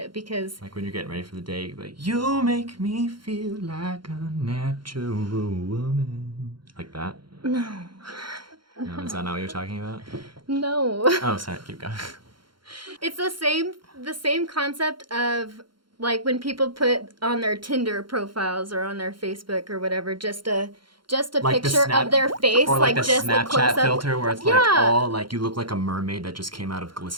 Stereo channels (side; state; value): left; late; 0.73 ms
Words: because Like when you're getting ready for the date, like, you make me feel like a natural woman. Like that? no. No, is that not what you're talking about? No. Oh, sorry, keep going. It's the same concept of like when people put on their Tinder profiles or on their Facebook or whatever just a Like the picture snap- of their face, Or like the just a Snapchat close up. filter where it's Yeah. like all like you look like a mermaid that just came out of